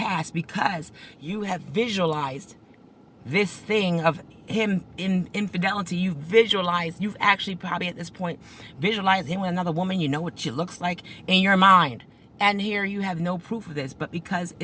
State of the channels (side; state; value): both; identical; correlation 1.00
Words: because you have visualized this thing of him in infidelity. You've actually probably at this point visualized him with another woman. You know what she looks like in your mind. And here you have no proof of this, but because